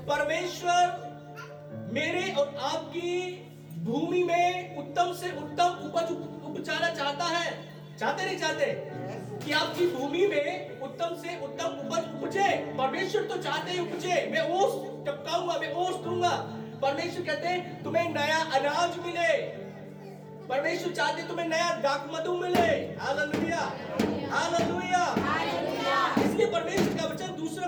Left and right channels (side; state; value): both; identical; correlation 1.00